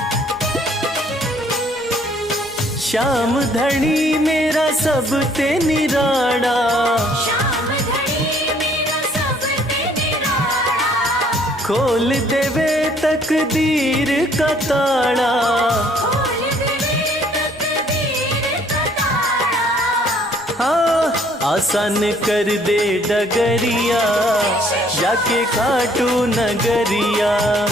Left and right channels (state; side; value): noise; right; rumble, 26 dB below the sound